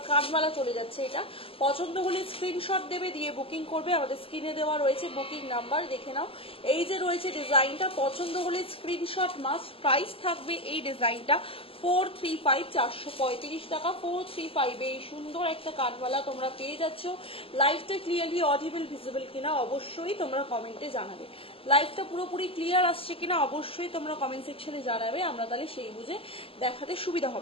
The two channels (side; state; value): right; late; 0.27 ms